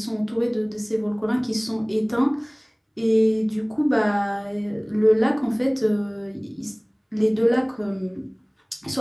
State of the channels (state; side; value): identical; both; correlation 1.00